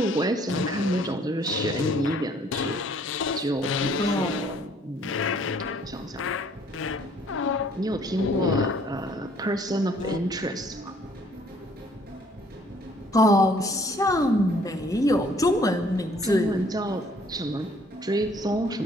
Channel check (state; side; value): normal; both; correlation 0.60